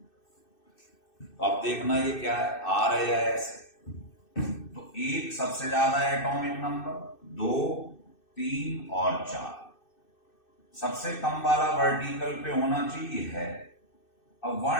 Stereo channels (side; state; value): right; late; 2.6 ms